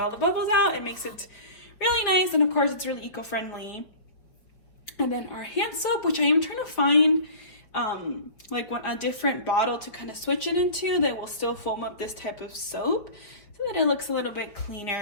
the bubbles out. It makes it really nice, and of course it's really eco-friendly. And then our hand soap, which I am trying to find like a different bottle to kind of switch it into that will still foam up this type of soap so that it looks a little bit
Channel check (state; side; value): late; right; 5.3 ms